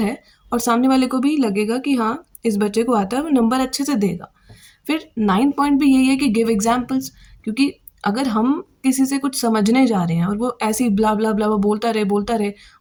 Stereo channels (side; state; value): both; identical; correlation 1.00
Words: है, और सामने वाले को भी लगेगा कि हाँ, इस बच्चे को आता है, वो नंबर अच्छे से देगा। फिर 9th पॉइंट भी यही है कि गिव एग्जांपल्स, क्योंकि अगर हम किसी से कुछ समझने जा रहे हैं और वो ऐसे ही ब्ला ब्ला ब्ला बोलता रहे